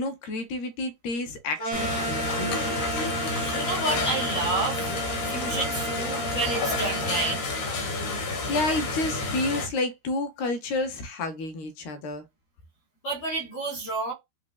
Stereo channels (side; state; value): right; late; 13 ms